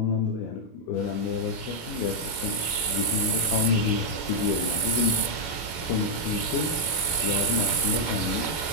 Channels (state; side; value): late; right; 25 ms